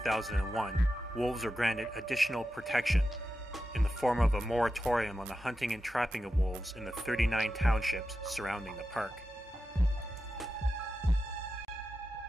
wolves were granted additional protection in the form of a moratorium on the hunting and trapping of wolves in the 39 townships surrounding the park.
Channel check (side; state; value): both; normal; correlation 0.90